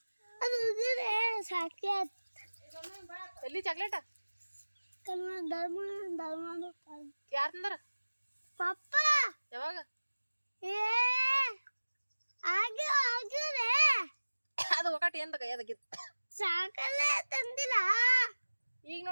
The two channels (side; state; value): both; inverted; correlation -1.00